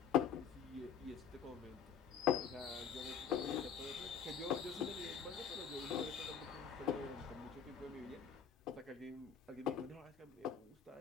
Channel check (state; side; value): quieter; right; 7.3 dB